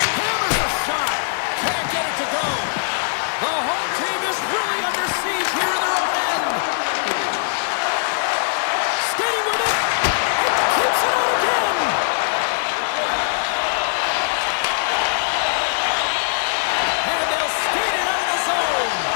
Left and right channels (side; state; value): right; silent; digital silence